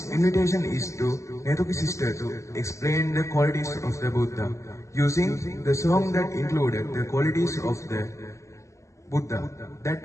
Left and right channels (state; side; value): late; right; 0.15 ms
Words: invitation is to Netuki sister to explain the qualities of the Buddha using the song that included the qualities of the Buddha that